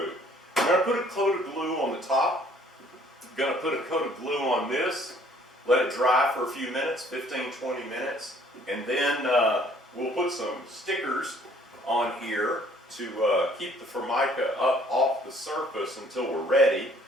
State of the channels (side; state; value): both; normal; correlation 0.59